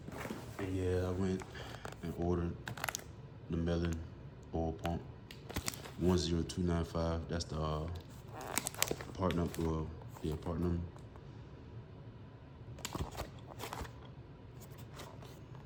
And yeah, I went and ordered the Melon oil pump 10295. That's the part number. Well, yeah, part number.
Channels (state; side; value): identical; both; correlation 1.00